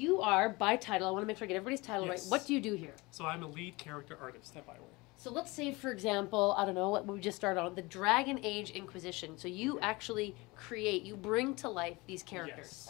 are, by title, I want to make sure I get everybody's title right. What do you do here? So I'm a lead character artist at Bioware. So let's say, for example, I don't know, what we just started on, the Dragon Age Inquisition. So you actually create, you bring to life these characters.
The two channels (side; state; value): right; quieter; 23.8 dB